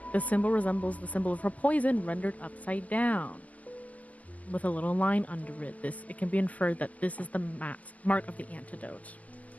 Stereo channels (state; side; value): late; right; 0.068 ms